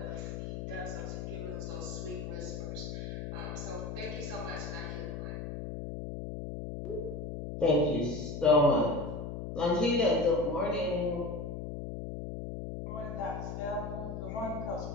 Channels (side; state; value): left; noise; hum, 6 dB below the sound